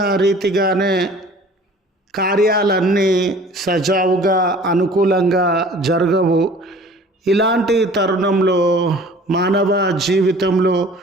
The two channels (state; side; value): normal; both; correlation 0.48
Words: రీతిగానే కార్యాలన్నీ సజావుగా, అనుకూలంగా జరగవు. ఇలాంటి తరుణంలో మానవ జీవితంలో